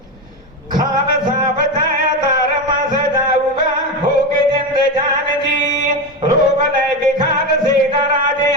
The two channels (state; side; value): normal; both; correlation 0.16